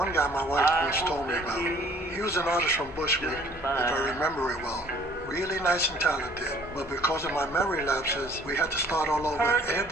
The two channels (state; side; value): normal; both; correlation 0.56